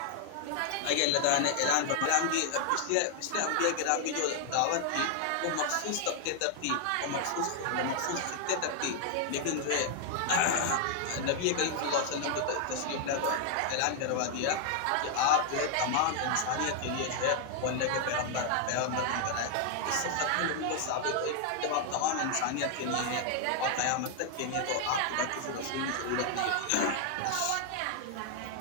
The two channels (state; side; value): different; both; correlation 0.00